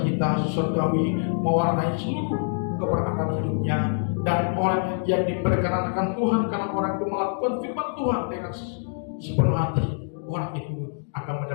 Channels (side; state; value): right; silent; digital silence